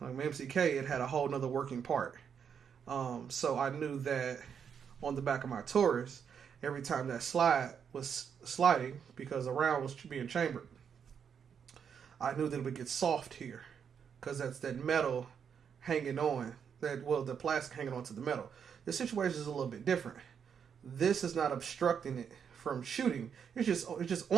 my MCK, it had a whole nother working part. So I knew that on the back of my Taurus, every time that slide was sliding, because the round was being chambered, I knew that it would get soft here, because that's that metal hanging on, the plastic hanging onto the metal. The situation is a little bit different. This is not obstructing it from shooting. It's just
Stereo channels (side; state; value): left; quieter; 7.3 dB